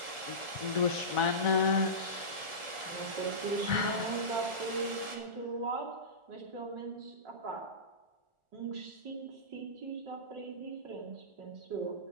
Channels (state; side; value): late; left; 1.4 ms